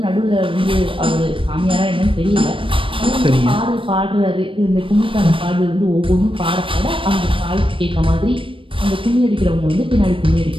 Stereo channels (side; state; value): left; late; 0.25 ms